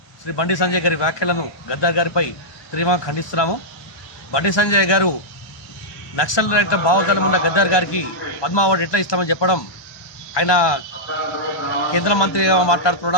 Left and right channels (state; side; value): late; right; 1.2 ms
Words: శ్రీ బండి సంజయ్ గారి వ్యాఖ్యలను గద్దార్ గారిపై తీవ్రంగా ఖండిస్తున్నాము. బండి సంజయ్ గారు నక్సల్ రహిత భావజాలం ఉన్న గద్దార్ గారికి పద్మ అవార్డు ఎట్లా ఇస్తామని చెప్పడం, ఆయన కేంద్ర మంత్రిగా